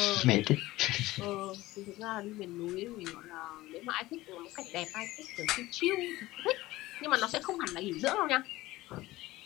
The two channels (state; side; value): quieter; right; 18.0 dB